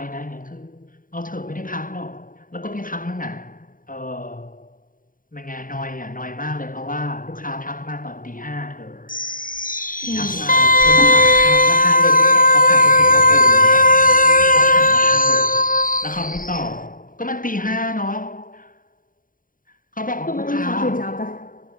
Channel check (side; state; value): right; late; 0.40 ms